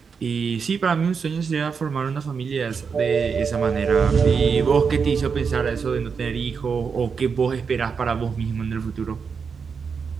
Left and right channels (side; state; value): left; quieter; 5.8 dB